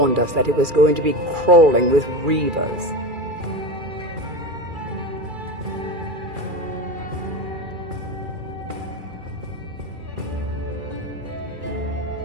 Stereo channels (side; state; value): left; late; 2.4 ms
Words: us that it was going to be crawling with reavers.